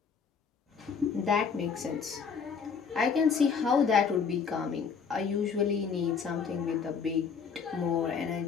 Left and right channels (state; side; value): quieter; right; 6.0 dB